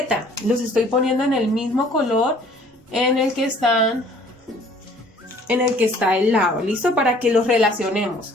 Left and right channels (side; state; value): both; normal; correlation 0.55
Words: Los estoy poniendo en el mismo color en el que está el lado. ¿Listo? Para que los relacionemos.